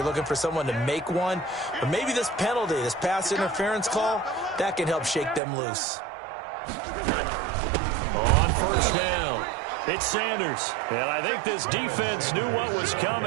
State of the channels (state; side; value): drops out; left; at 5.4 s